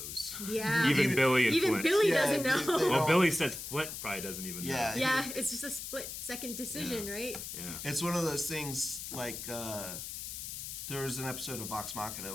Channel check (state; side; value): noise; left; hiss, 8 dB below the sound